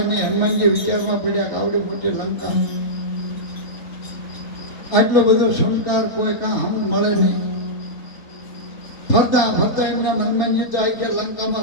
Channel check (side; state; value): right; late; 3.5 ms